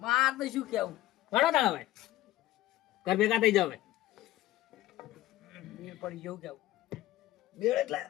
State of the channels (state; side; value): quieter; right; 15.3 dB